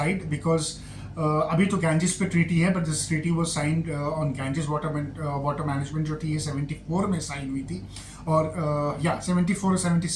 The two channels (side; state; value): both; identical; correlation 1.00